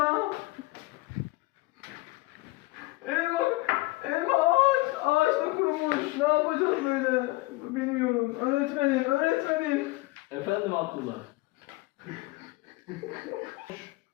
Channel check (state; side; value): quieter; right; 21.5 dB